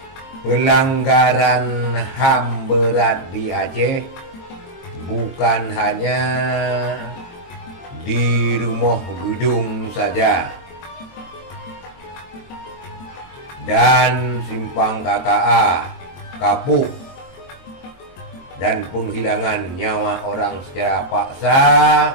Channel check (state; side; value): late; right; 23 ms